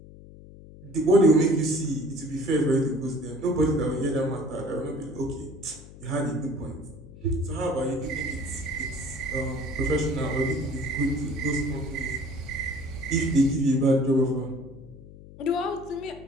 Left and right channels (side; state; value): left; noise; hum, 18 dB below the sound